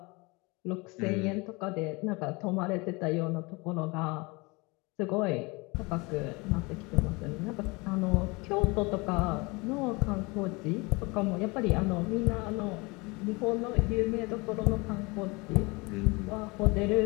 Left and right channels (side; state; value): right; quieter; 26.2 dB